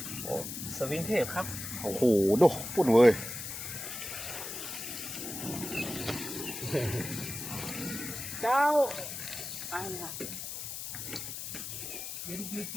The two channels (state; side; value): noise; left; hiss, 7 dB below the sound